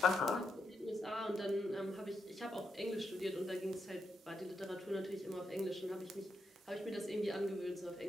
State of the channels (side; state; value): both; normal; correlation 0.84